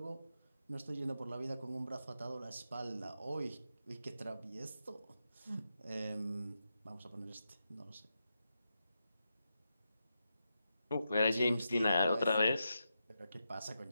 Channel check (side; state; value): both; inverted; correlation -0.87